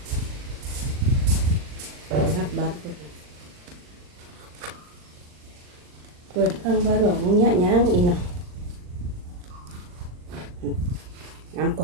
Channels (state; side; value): late; left; 39 ms